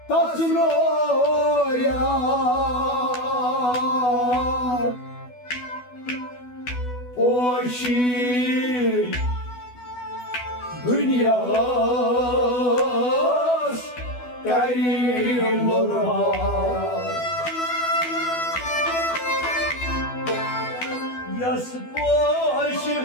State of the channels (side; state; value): right; late; 12 ms